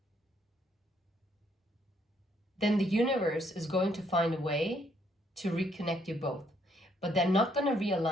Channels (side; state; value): both; normal; correlation 0.69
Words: then the universe is going to find a way to reconnect you both. But they're not going to